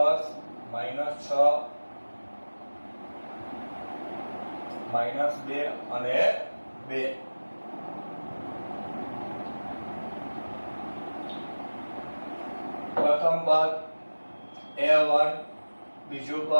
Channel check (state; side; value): inverted; both; correlation -1.00